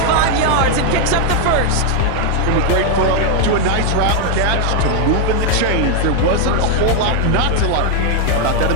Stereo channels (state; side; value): different; both; correlation 0.01